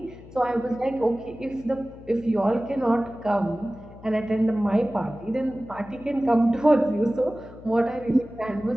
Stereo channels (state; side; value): noise; left; hum, 19 dB below the sound